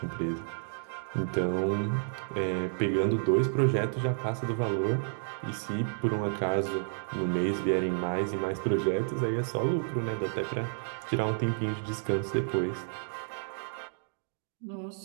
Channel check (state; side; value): silent; left; 57 dB below the other